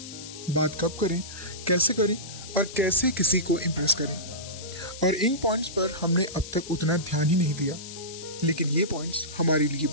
बात कब करें, कैसे करें और कैसे किसी को इम्प्रेस करें। और इन पॉइंट्स पर हमने अब तक उतना ध्यान ही नहीं दिया, लेकिन ये पॉइंट्स हमारे लिए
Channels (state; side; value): noise; left; hiss, 13 dB below the sound